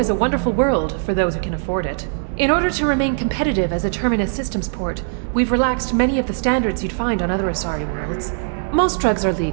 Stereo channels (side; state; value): left; silent; digital silence